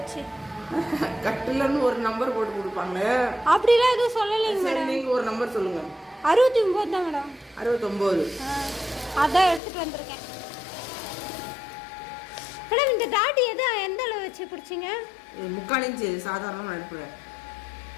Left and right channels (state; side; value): drops out; right; at 9.6 s